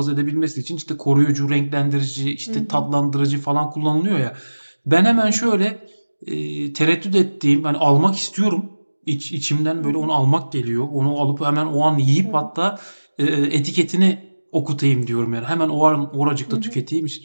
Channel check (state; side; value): inverted; both; correlation -1.00